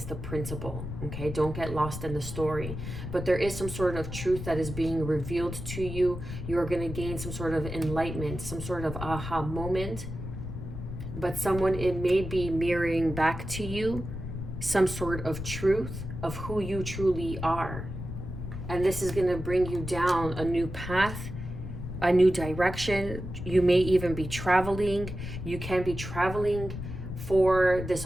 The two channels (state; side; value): noise; left; rumble, 7 dB below the sound